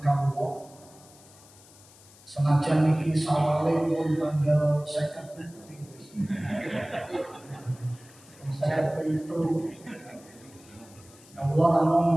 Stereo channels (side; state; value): left; noise; hiss, 24 dB below the sound